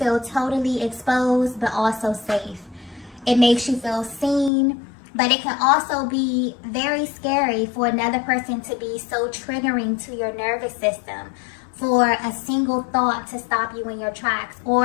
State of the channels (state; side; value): drops out; right; at 4.5 s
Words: totally exposed, but also safe. It makes you feel seen, but it can also be very scary for another person to be so triggering to your nervous system, for a single thought to stop you in your tracks,